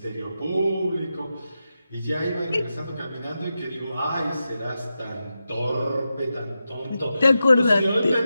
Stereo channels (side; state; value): both; inverted; correlation -0.90